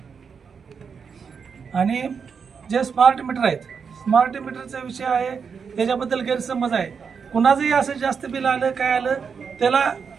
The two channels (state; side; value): quieter; left; 6.1 dB